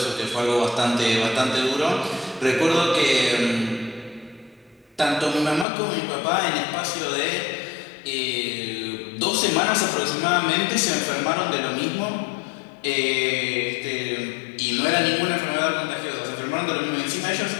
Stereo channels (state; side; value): drops out; right; at 5.7 s